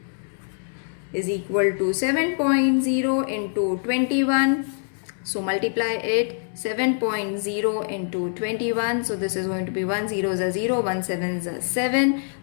is equal to 7.0 into 21. So multiply it. 7.0 into 21. So this is going to be 1 zeros are 0, 1 sevens are 7,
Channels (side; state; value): right; silent; 62 dB below the other